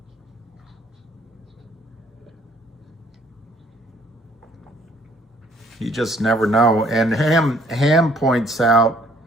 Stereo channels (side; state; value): both; normal; correlation 0.61